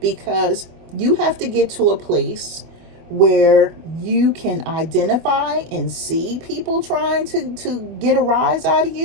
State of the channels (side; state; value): left; late; 25 ms